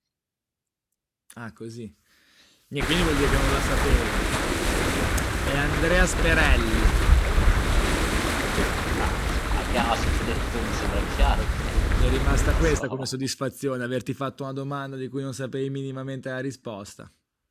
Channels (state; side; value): identical; both; correlation 1.00